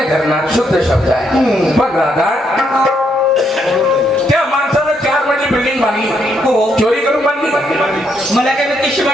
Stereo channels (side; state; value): both; normal; correlation 0.75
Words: धरणार, शुद्ध शब्द आहे. बघ राधा, त्या माणसानं 4 मजली बिल्डिंग बांधली. हो. चोरी करून बांधली. मला काय कशी